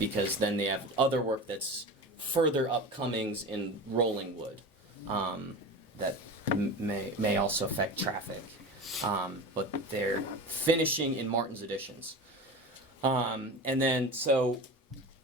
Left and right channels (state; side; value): normal; both; correlation 0.30